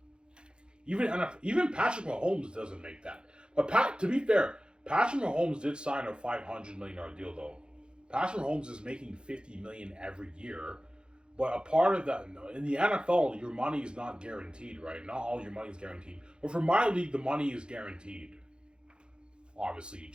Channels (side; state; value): left; late; 0.051 ms